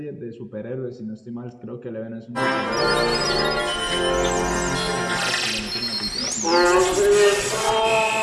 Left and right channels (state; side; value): identical; both; correlation 1.00